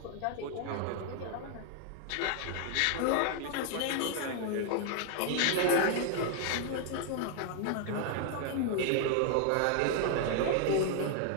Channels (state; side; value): different; both; correlation 0.00